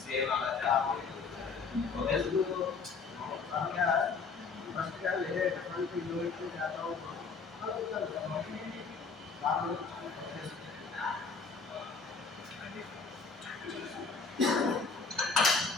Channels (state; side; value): quieter; right; 4.8 dB